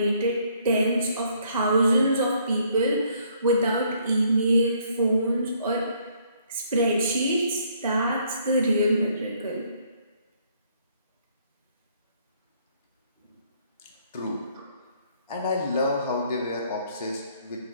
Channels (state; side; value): inverted; both; correlation -0.66